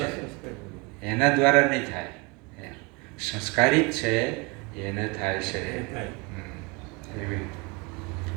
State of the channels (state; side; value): quieter; left; 28.1 dB